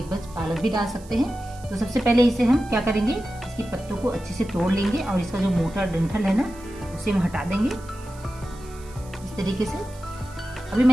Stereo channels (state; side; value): noise; right; hiss, 23 dB below the sound